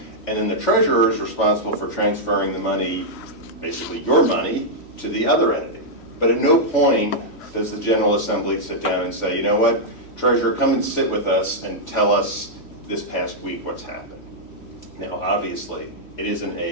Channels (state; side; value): late; right; 3.1 ms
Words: then the treasurer is responsible for transferring the money, basically your money, to the other entity. But at no point does the General Assembly sit down and say, you know what, treasurer, come and sit with us and tell us this past week what's happened. Now, obviously,